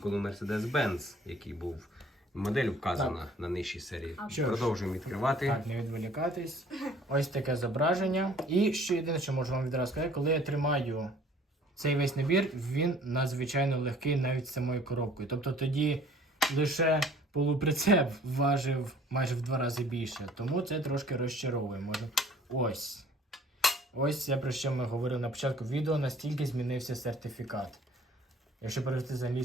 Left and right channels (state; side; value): normal; both; correlation 0.54